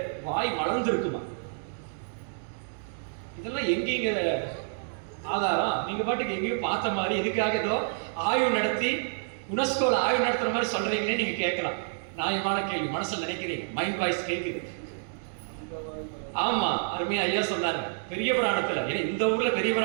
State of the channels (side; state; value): left; silent; digital silence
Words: வாய் மலர்ந்து இருக்குமா. இதெல்லாம் எங்கேங்கிற ஆதாரம்? நீங்க பாட்டுக்கு எங்கேயும் பார்த்த மாதிரி எதுக்காக ஏதோ ஆய்வு நடத்தி யுனெஸ்கோல ஆய்வு நடத்துற மாதிரி சொல்றீங்களே நீங்க கேட்கலாம். நியாயமான கேள்வி, மனசுல நினைக்கிறீங்க, மைண்ட் வாய்ஸ் கேட்குது. ஆமா, அருமையா ஐயா சொன்னாங்க பெரிய புராணத்துல. ஏன்னா இந்த ஊர்ல பெரிய